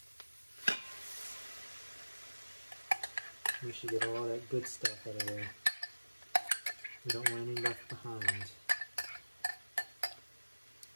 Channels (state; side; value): inverted; both; correlation -1.00